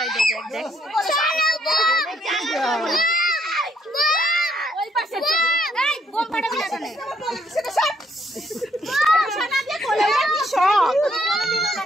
দেখ ওই পাশে এই বোম ফাটাবি না কেন সেটা সব সোনা দিয়ে কোলে কি সব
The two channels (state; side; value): normal; both; correlation 0.70